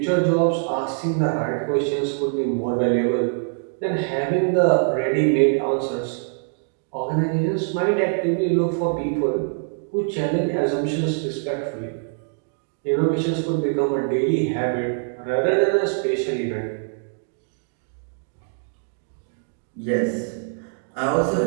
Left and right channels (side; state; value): left; silent; digital silence